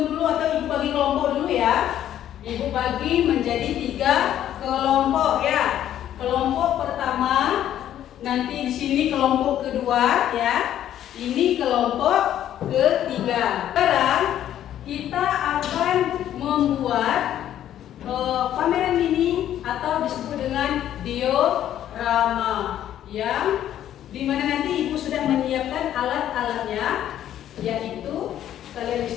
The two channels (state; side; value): quieter; right; 11.3 dB